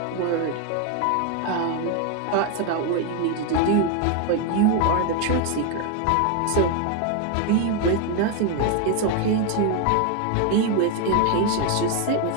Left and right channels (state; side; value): different; both; correlation 0.01